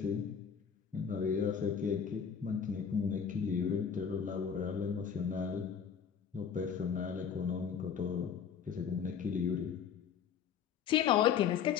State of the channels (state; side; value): quieter; right; 7.4 dB